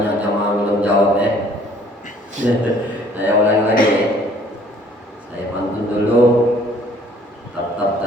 jamaah belum jawab ya. Saya ulangi lagi ya. Saya pantun dulu. Tatap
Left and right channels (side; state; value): both; normal; correlation 0.57